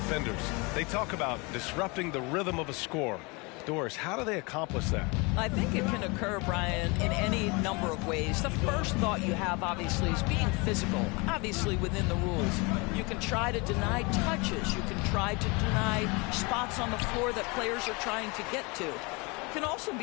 They talk about disrupting the rhythm of a score. Doris, how do they accomplish that? I think it can occur, Brian, in any number of ways. The first thought you have, obviously, is being physical, obviously within the rules. You can try to deny touches. You can try to deny spots on the floor that players are trying to get to. It can also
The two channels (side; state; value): right; quieter; 28.1 dB